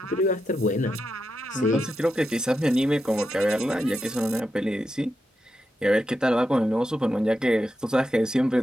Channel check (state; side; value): normal; both; correlation 0.87